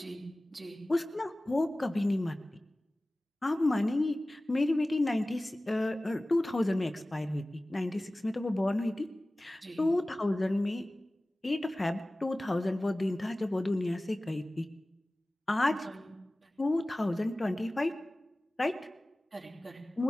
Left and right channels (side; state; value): both; normal; correlation 0.97